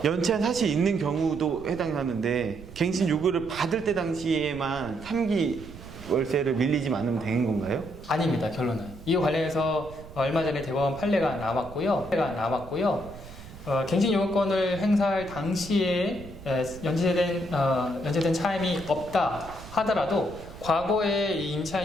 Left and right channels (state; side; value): noise; right; rumble, 16 dB below the sound